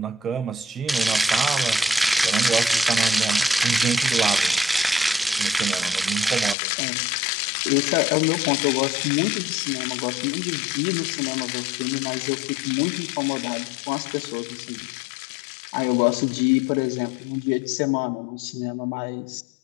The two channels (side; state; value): right; drops out; at 6.6 s